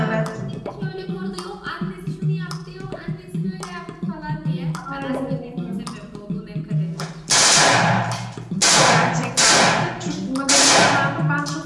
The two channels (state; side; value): identical; both; correlation 1.00